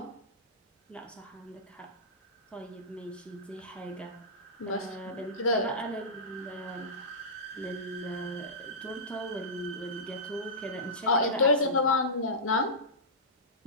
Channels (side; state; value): both; normal; correlation -0.17